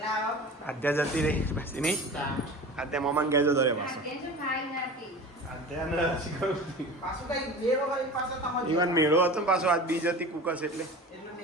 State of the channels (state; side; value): normal; both; correlation 0.35